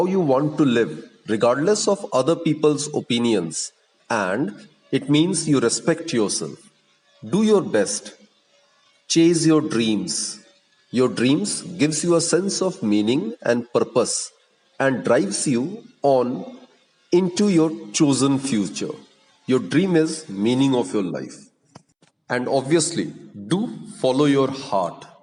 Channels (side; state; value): both; identical; correlation 1.00